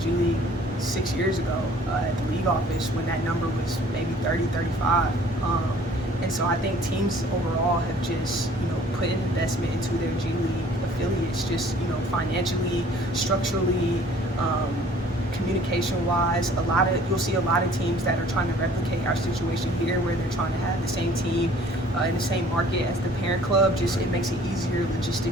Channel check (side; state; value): both; normal; correlation 0.54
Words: G League 6 years ago at the league office when that number was maybe 30, 35. And so I think teams overall have just, put an investment into their G League affiliates, just, financially, structurally, communication-wise. You'll see a lot of teams that are trying to replicate our situation here, where they're trying to have the same team in the same market as the parent club. Just it makes it easier